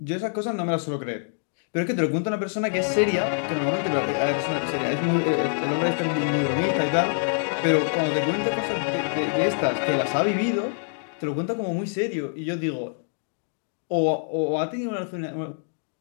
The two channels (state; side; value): silent; right; digital silence